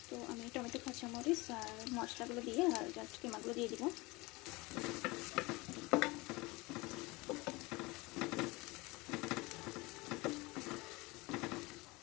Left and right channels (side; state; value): right; quieter; 23.6 dB